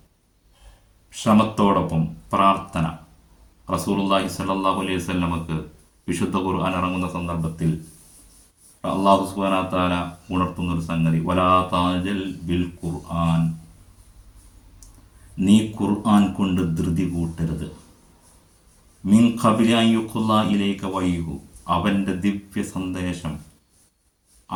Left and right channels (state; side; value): identical; both; correlation 1.00